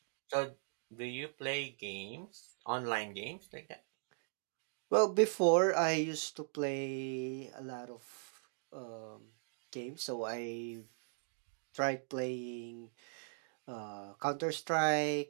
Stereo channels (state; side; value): silent; left; digital silence